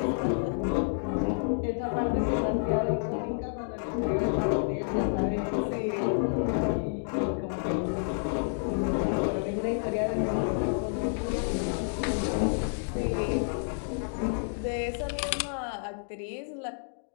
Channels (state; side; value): silent; right; digital silence